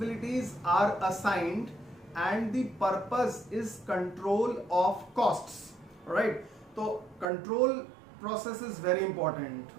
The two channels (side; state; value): left; drops out; at 7.2 s